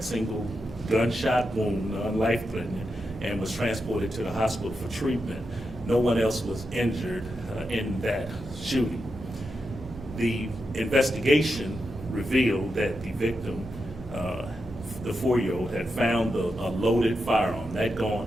single gunshot wound, non-life-threatening, and was transported to the hospital for treatment. No one else was injured in that shooting. The investigation revealed that the victim, the 4-year-old, had found a loaded firearm. That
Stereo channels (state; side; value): noise; left; hum, 18 dB below the sound